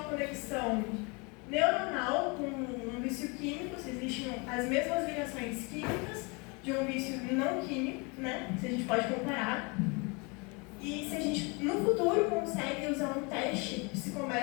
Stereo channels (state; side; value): quieter; right; 30.0 dB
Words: conexão neuronal com um vício químico, se existem as mesmas ligações químicas de um vício não químico, né? Se a gente pode comparar. E se a gente, no futuro, consegue usar um teste